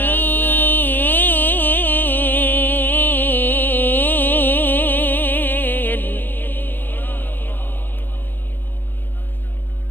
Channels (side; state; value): right; late; 0.094 ms